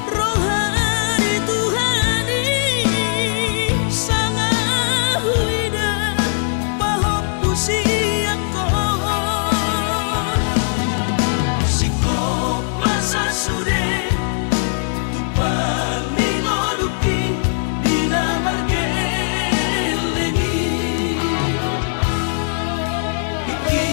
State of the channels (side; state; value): right; silent; digital silence